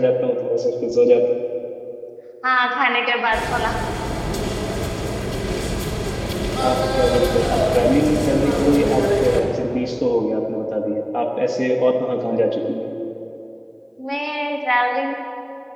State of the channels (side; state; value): both; identical; correlation 1.00